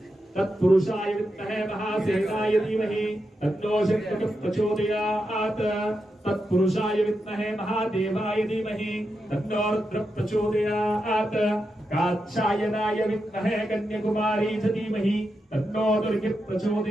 తత్పురుషాయ విద్మహే మహాసేనాయ ధీమహి తన్నో శక్తి ప్రచోదయాత్. తత్పురుషాయ విద్మహే మహాదేవాయ ధీమహి తన్నో రుద్ర ప్రచోదయాత్. కాత్యాయనాయ విద్మహే కన్యాకుమారీ చ ధీమహి తన్నో దుర్గి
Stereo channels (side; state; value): both; normal; correlation 0.87